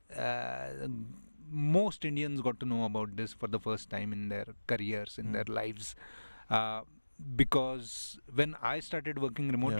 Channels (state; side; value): inverted; both; correlation -1.00